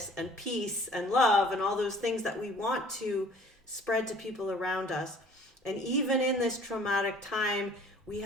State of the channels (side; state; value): both; normal; correlation 0.52